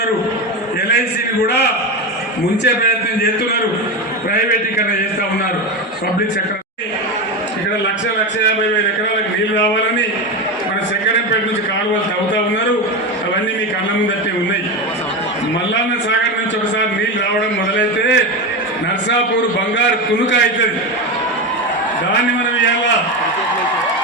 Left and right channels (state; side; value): normal; both; correlation 0.18